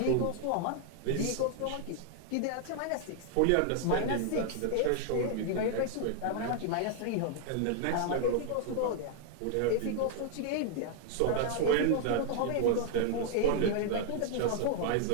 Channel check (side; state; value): both; different; correlation 0.00